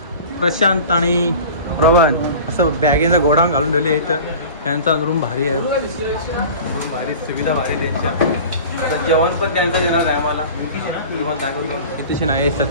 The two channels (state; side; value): inverted; both; correlation -0.39